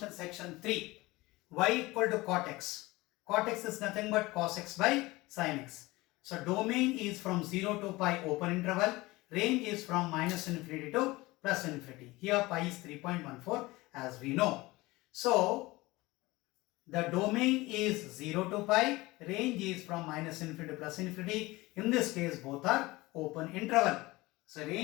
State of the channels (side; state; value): right; quieter; 20.8 dB